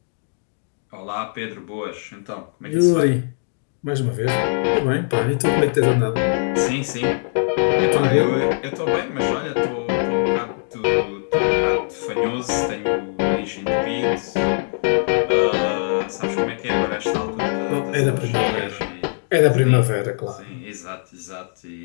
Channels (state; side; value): silent; right; digital silence